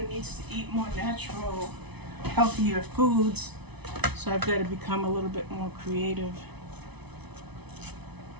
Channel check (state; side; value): late; left; 0.99 ms